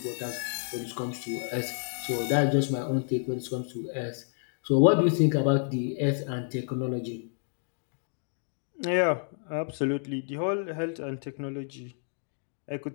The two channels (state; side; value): silent; right; 58 dB below the other